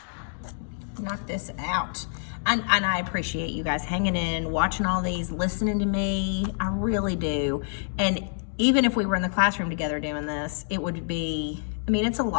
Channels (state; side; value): silent; right; digital silence